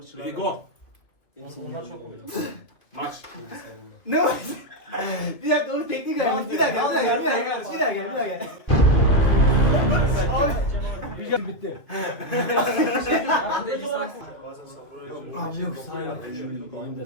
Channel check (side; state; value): right; late; 2.4 ms